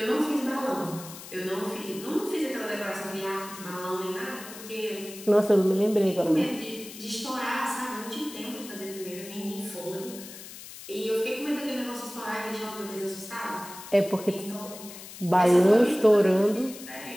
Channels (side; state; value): left; noise; hiss, 14 dB below the sound